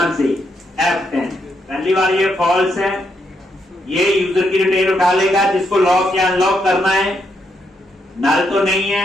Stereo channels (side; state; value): both; normal; correlation 0.79